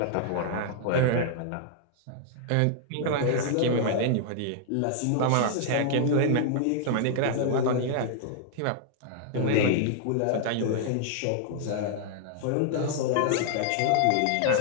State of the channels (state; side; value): different; both; correlation -0.01